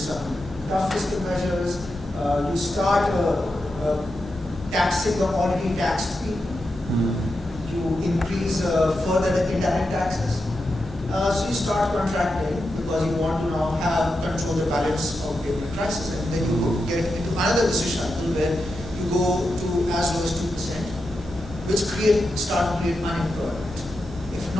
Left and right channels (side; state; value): both; normal; correlation 0.88